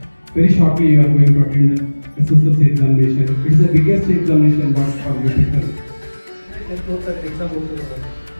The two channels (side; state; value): both; inverted; correlation -1.00